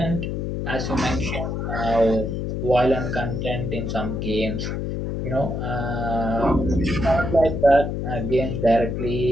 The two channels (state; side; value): noise; left; hum, 3 dB below the sound